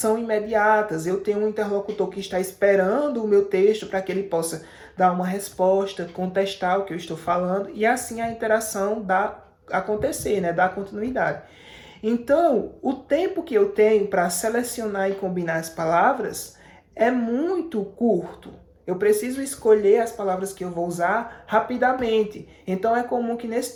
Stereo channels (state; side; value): identical; both; correlation 1.00